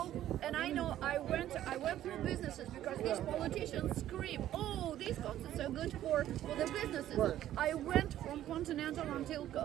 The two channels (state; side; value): quieter; left; 12.5 dB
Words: know, I went through businesses because these politicians scream, oh, these concerts are good for the businesses. Right. I went from Continental until